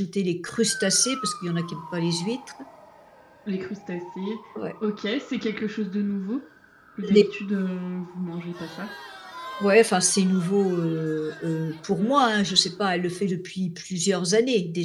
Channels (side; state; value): both; identical; correlation 1.00